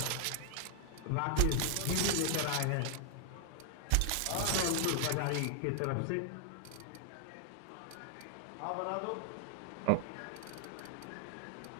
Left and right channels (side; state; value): both; different; correlation 0.00